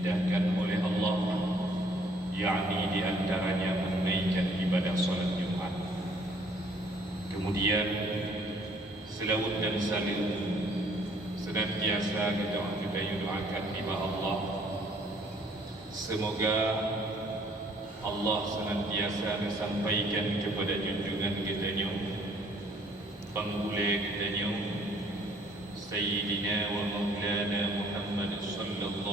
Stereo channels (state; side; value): normal; both; correlation 0.60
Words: oleh Allah, yakni di antaranya menunaikan ibadah salat Jumat. Kemudian selawat dan salim senantiasa kita doakan kepada Allah, semoga Allah senantiasa menyampaikan kepada junjungan kita, penggula kita, Sayyidina wa Maulana Muhammad